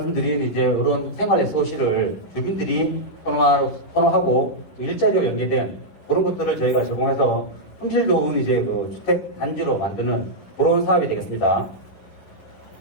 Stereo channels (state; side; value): late; right; 11 ms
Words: 이제 이런 생활 SOC를 주민들이 선호하고 일자리와 연계된 그런 것들을 저희가 제공해서 품질 좋은 이제 그 주택 단지로 만드는 그런 사업이 되겠습니다.